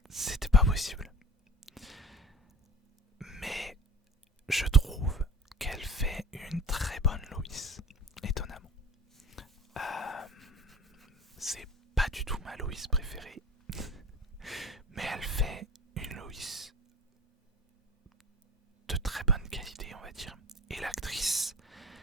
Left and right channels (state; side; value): normal; both; correlation 0.40